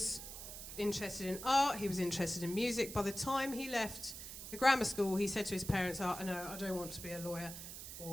interested in art, he was interested in music. By the time he left the grammar school, he said to his parents, oh, no, I don't want to be a lawyer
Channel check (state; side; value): noise; right; hiss, 10 dB below the sound